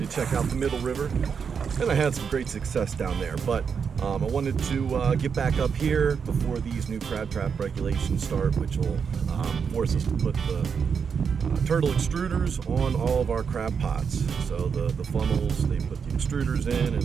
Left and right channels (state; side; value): quieter; left; 6.4 dB